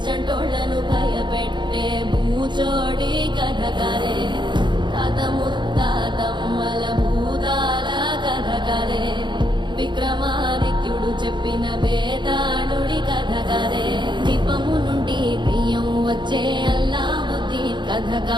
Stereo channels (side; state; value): left; late; 0.22 ms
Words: చంటోళ్లను భయపెట్టే భూచోడి కథ కదే తాత ముత్తాతమ్మల భూతాల కథ కదే విక్రమాదిత్యుడు చెప్పిన వేదాళుడి కథ కదే దీపము నుండి దెయ్యం వచ్చే అల్లావుద్దీన్ కథ